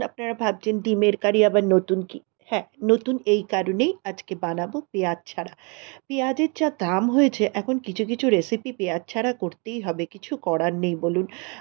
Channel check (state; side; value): quieter; left; 33.0 dB